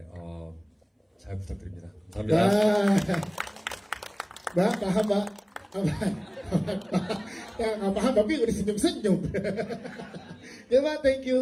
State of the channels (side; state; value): both; identical; correlation 1.00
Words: 잘 부탁드립니다. 감사합니다. Mbak, paham Mbak? Ya nggak paham tapi udah senyum-senyum. Ya Mbak, thank